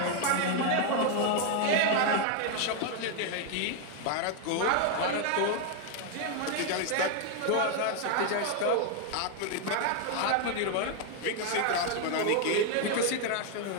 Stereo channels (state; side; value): different; both; correlation 0.01